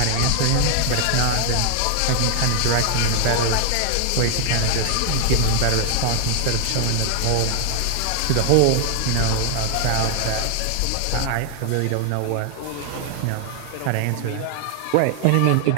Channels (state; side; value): different; both; correlation 0.00